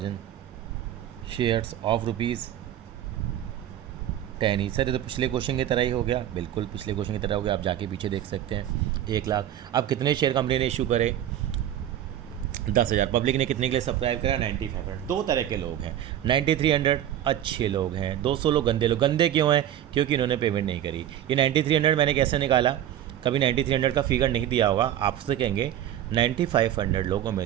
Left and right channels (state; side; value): quieter; left; 11.4 dB